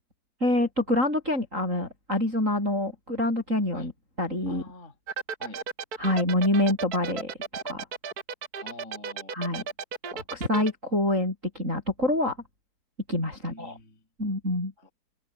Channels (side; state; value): left; late; 4.5 ms